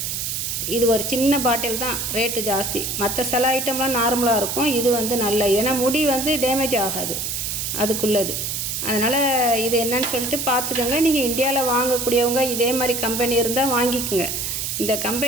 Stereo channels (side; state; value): right; noise; hiss, 3 dB below the sound